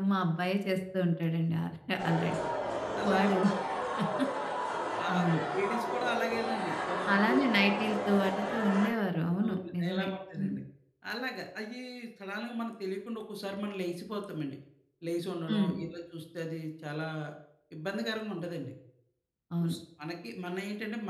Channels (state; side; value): identical; both; correlation 1.00